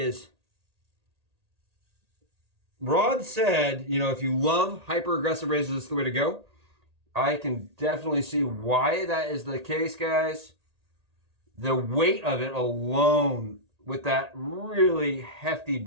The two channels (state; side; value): late; left; 1.8 ms